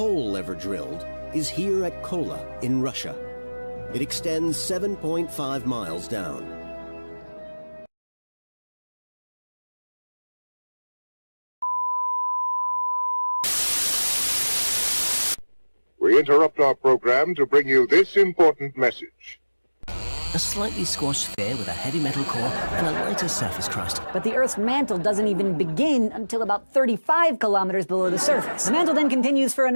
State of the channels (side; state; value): both; inverted; correlation -1.00